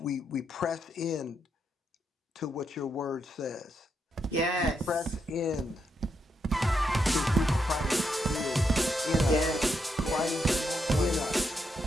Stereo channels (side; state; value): both; normal; correlation 0.80